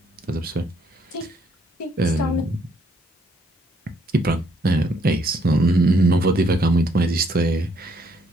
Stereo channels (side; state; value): both; normal; correlation 0.69